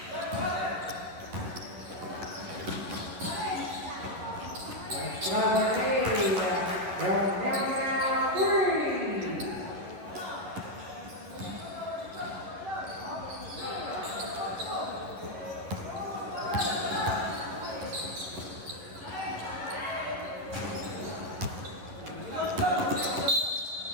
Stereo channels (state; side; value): late; left; 11 ms